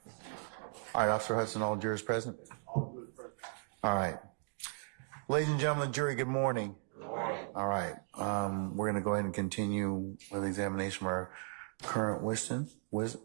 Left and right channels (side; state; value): left; silent; 53 dB below the other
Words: All right, Officer Hudson, all jurors present? All good, present. All right. Ladies and gentlemen, jury, good morning. Good morning. All right. We're going to go ahead and continue with the examination of our current